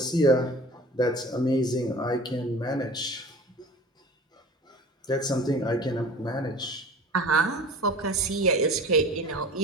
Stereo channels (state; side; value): normal; both; correlation 0.41